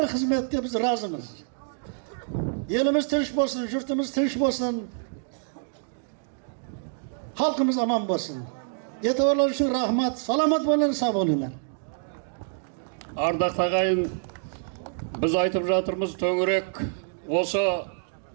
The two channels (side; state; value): left; silent; digital silence